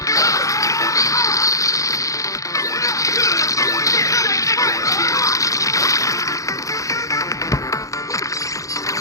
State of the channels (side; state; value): right; late; 0.16 ms